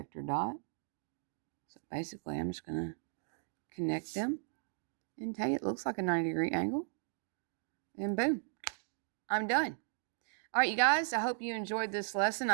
dot. So basically, I'm just going to connect them and tell you it looks like a 90-degree angle. And boom, I'm done. All right, you guys, I hope you enjoyed this lesson.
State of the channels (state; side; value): silent; left; digital silence